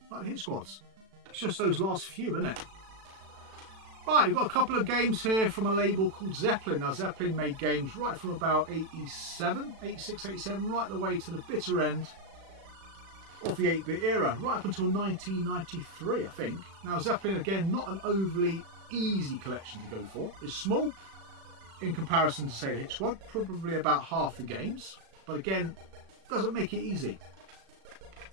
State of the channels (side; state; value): left; late; 36 ms